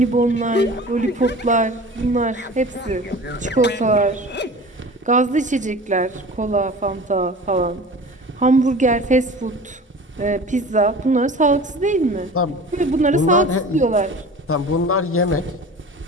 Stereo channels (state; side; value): normal; both; correlation 0.39